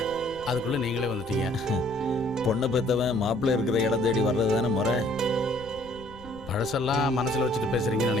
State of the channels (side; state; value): left; noise; rumble, 20 dB below the sound